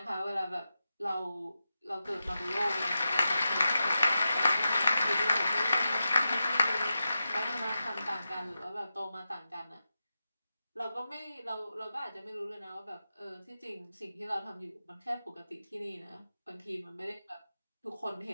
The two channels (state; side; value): inverted; both; correlation -0.90